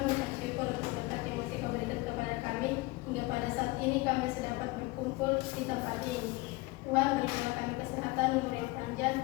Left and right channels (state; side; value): quieter; right; 22.1 dB